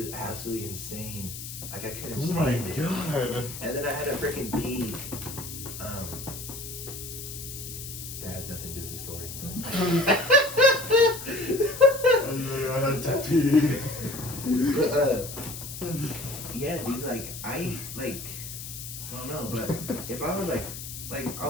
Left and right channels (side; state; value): left; noise; hiss, 10 dB below the sound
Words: absolutely insane. Like I couldn't stand it. God. And then I had to freaking pee. That has nothing to do with the story, but I had to pee. But yeah, dude, like I don't know, but if I was like I